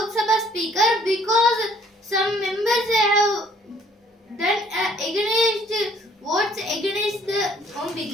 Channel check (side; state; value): both; normal; correlation 0.59